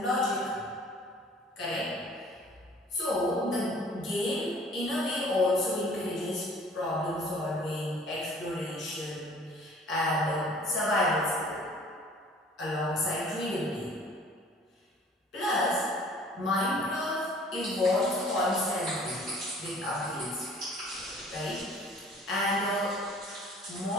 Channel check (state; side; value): normal; both; correlation 0.51